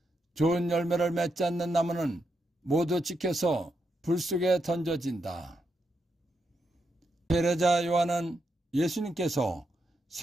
좋은 열매를 맺지 않는 나무는 모두 찍혀서 불 속에 던져진다. 세례자 요한은 예수님께서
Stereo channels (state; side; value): normal; both; correlation 0.83